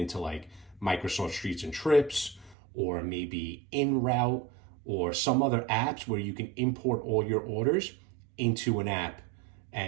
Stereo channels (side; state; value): left; drops out; at 2.6 s